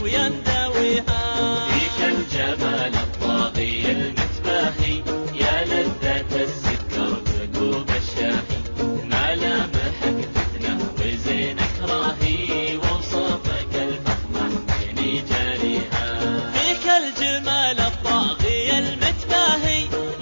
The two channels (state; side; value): inverted; both; correlation -1.00